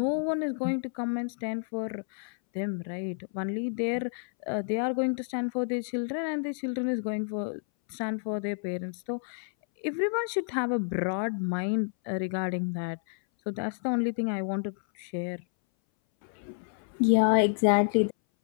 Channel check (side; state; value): right; silent; 58 dB below the other